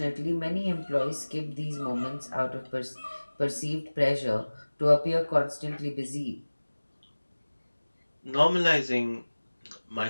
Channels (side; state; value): both; inverted; correlation -1.00